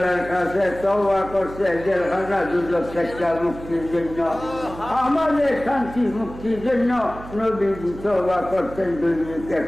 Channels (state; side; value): noise; right; hum, 14 dB below the sound